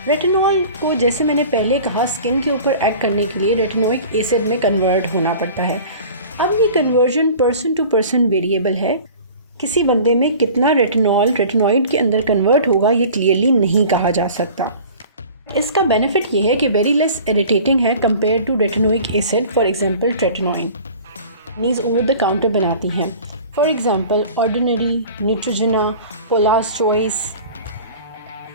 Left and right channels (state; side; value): inverted; both; correlation -0.43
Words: रेटिनॉल को, जैसे मैंने पहले कहा, स्किन के ऊपर एक्ट करने के लिए रेटिनोइक एसिड में कन्वर्ट होना पड़ता है। अब ये conversion person to person variable है। किसी बंदे में कितना रेटिनॉल रेटिनॉइड के अंदर कन्वर्ट होगा ये क्लियरली नहीं कहा जा सकता। इसका बेनिफिट ये है कि वेरी लेस इरिटेटिंग है compare to retinoic acid. For example tretinoin नीज ओवर द काउंटर बनाती हैं, for example ordinary, Neutrogena, Paula's choice.